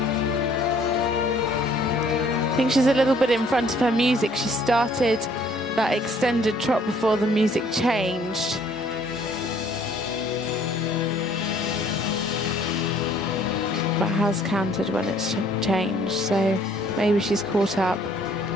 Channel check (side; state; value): both; normal; correlation 0.60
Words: I think she's a little bit in front of her music. She started that extended trot before the music changed. But has counted when it's changed, so maybe she's caught up.